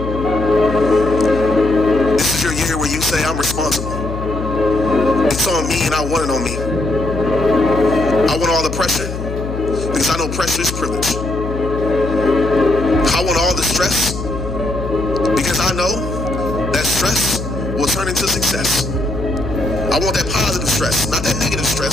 This is your year where you say, "I'm responsible. It's on me and I want it on me. I want all the pressure because I know pressure is privilege. I want all the stress because I know that stress will turn into success. I want that positive stress, not that negative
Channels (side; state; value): left; noise; hum, 7 dB below the sound